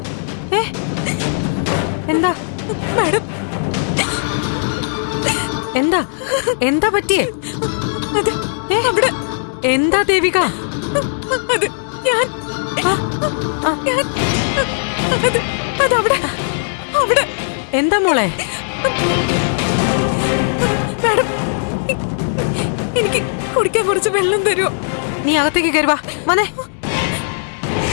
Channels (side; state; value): right; silent; digital silence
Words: എന്താ മാഡം? എന്താ എന്താ പറ്റിയേ? അവിടെ എന്താ ദേവിക? അത് ഞാൻ അതവിടെ അവിടെ. എന്താ മോളെ? മാഡം, എനിക്ക് കുടിക്കാൻ കുറച്ച് വെള്ളം തരുമോ? നീ അകത്തേക്ക് കയറുവാ. വന്നേ.